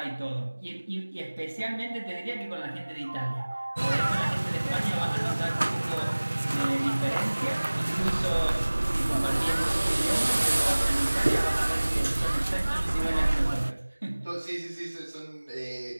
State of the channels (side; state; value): both; inverted; correlation -1.00